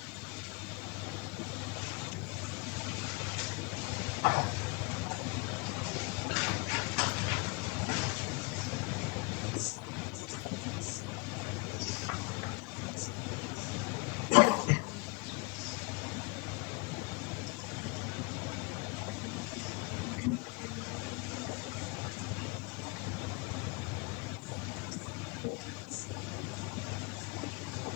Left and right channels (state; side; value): quieter; right; 28.1 dB